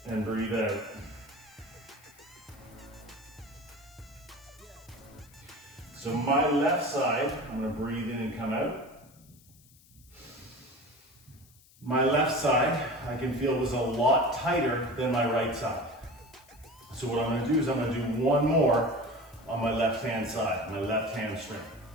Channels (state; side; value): noise; left; hiss, 27 dB below the sound